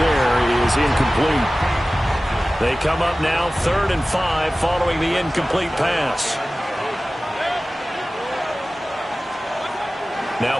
is incomplete. They come up now 3rd and 5 following the incomplete pass.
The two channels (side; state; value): both; normal; correlation 0.97